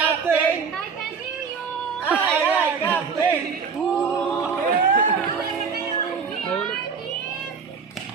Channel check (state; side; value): quieter; left; 5.8 dB